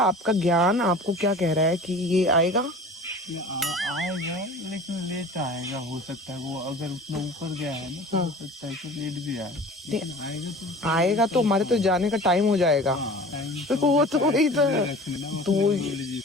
आपका ज्ञान आपको क्या कह रहा है कि ये आएगा? आएगा, लेकिन लेट आएगा। हो सकता है वो अगर उतना ऊपर गया है ना, तो हो सकता है कि लेट भी आए। लेकिन आएगा तो हमारे तो जाने का टाइम हो जाएगा। तो वो तो वही तो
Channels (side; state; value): both; normal; correlation 0.41